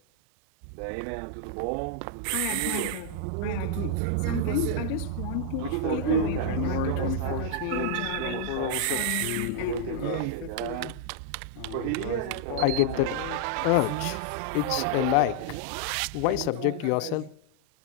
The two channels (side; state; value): both; different; correlation -0.01